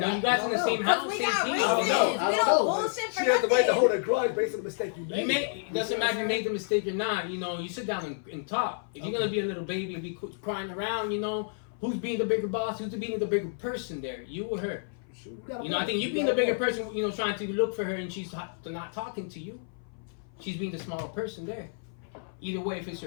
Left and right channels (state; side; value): silent; right; 56 dB below the other